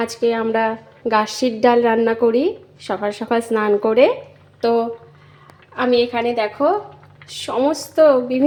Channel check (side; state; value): both; identical; correlation 1.00